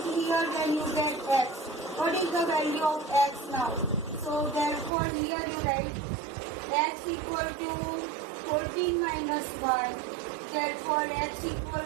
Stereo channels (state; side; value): drops out; left; at 4.9 s